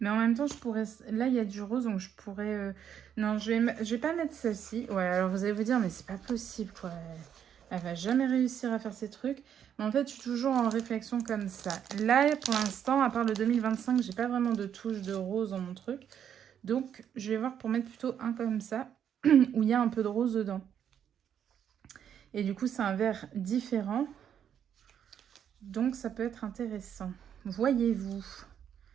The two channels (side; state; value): left; quieter; 8.9 dB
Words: en même temps, je pourrais... Là, il y a du rose, donc je pourrais... Non, je vais pas mettre celle-ci. Ouais, alors vous allez vous dire, mais c'est pas possible, quoi. Elle va jamais réussir à faire ces trucs. Mais en fait, je suis toujours en réflexion comme ça. Là, pour l'instant, à part le 2025, j'ai pas vraiment de touche de rose dans mon truc. Donc, je vais voir pour mettre plutôt un comme ça, où il y a un peu de rose dedans. Et du coup, c'est un vert différent. Donc, ça peut être intéressant. Voyez-vous.